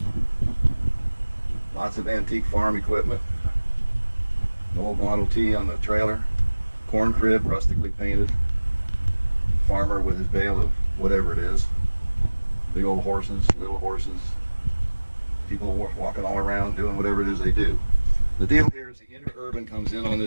Lots of antique farm equipment. An old Model T on the trailer. Corn crib, rustically painted. Farmer with his bale of whatever it is. Big old horses, little horses, people walking all around doing whatever it is they do. The deal here is the interurban comes in on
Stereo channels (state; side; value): inverted; both; correlation -1.00